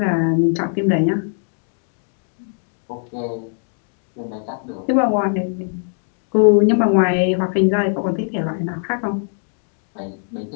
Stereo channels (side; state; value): right; silent; 59 dB below the other